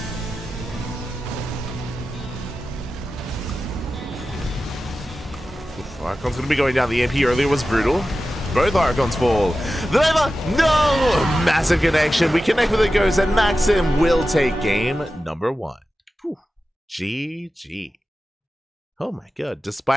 Archon's going to be going down. The EMP earlier was brutal. Both Archons fall. The Nova, no! Massive connection. We connect with the Ghost, and Maxim will take game number 1. Whew. GG. Oh my god.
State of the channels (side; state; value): both; normal; correlation 0.93